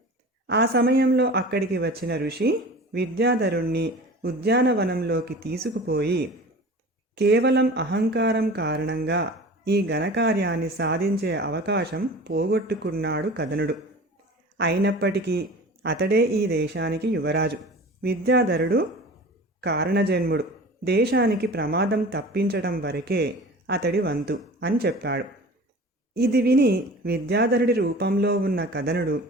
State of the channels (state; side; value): normal; both; correlation 0.39